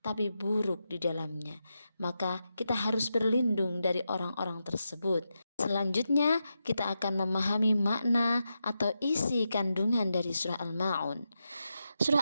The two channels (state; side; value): inverted; both; correlation -0.87